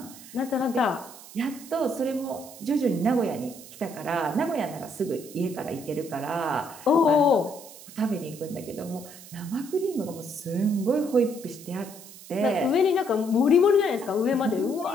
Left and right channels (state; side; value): noise; right; hiss, 17 dB below the sound